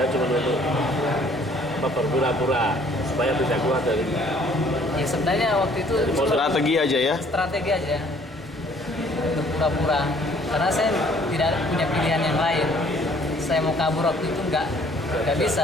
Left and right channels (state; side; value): normal; both; correlation 0.59